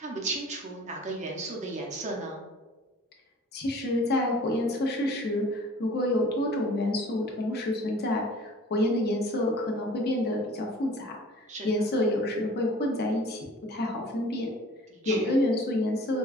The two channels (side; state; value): both; normal; correlation 0.48